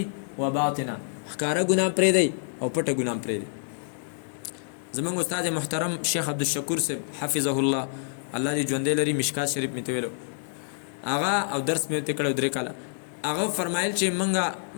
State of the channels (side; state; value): right; silent; digital silence